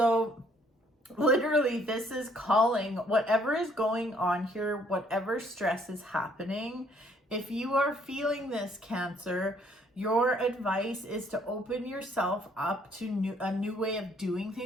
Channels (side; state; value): both; normal; correlation 0.64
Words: literally, this is calling whatever is going on here, whatever stress is happening. If you are feeling this, Cancer, your advice is to open yourself up to a new way of doing